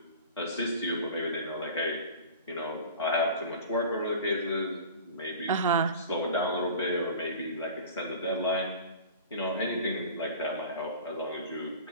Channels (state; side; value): inverted; both; correlation -0.38